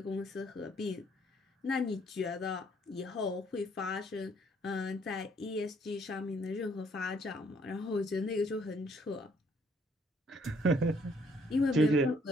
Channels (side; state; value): both; normal; correlation 0.65